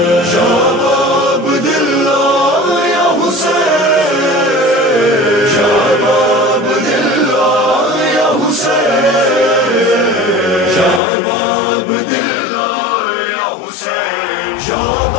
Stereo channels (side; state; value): right; drops out; at 11.0 s